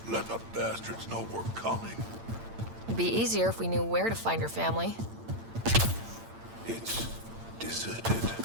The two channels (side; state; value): left; late; 8.8 ms